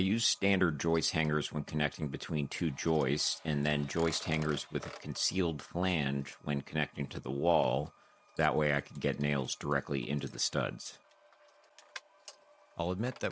standard joist hangers when connecting between two joists, and then joist hangers with a concealed flange when connecting to the wall. That way I could get nails directly into the studs. I'll admit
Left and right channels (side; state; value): both; identical; correlation 1.00